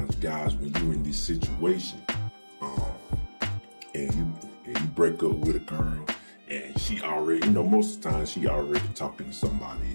guys, when you're in this situation, and you break up with a girl, and she already, most of the time she already talking to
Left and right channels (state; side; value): inverted; both; correlation -1.00